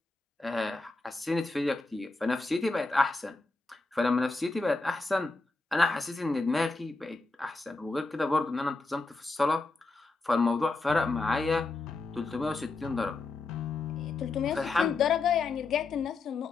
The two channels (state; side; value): quieter; right; 3.5 dB